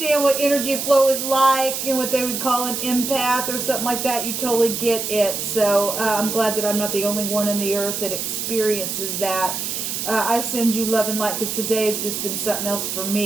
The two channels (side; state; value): right; noise; hiss, 3 dB below the sound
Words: what energy flow is like and what they would call an empath or something like that, you totally get it. So I'm glad that I'm not the only one on the earth that experiences that. I send you love and light because today has just been something else for